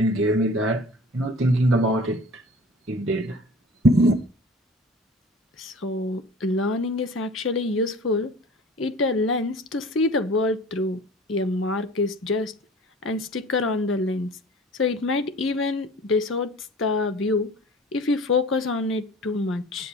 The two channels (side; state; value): both; normal; correlation 0.43